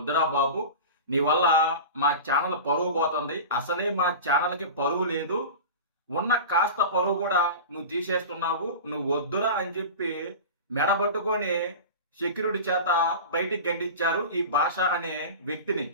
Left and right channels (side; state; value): both; inverted; correlation -0.30